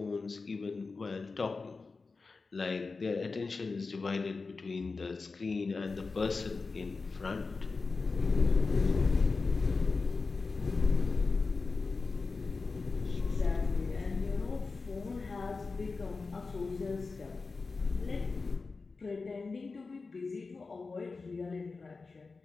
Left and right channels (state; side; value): quieter; right; 4.2 dB